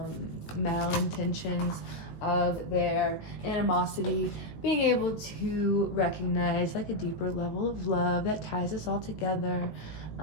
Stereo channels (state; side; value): late; right; 18 ms